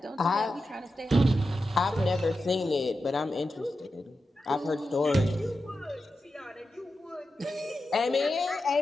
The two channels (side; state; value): both; normal; correlation 0.90